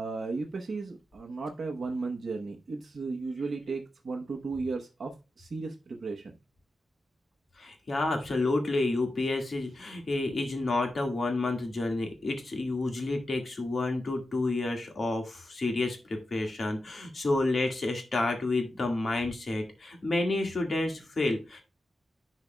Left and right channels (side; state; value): both; normal; correlation 0.90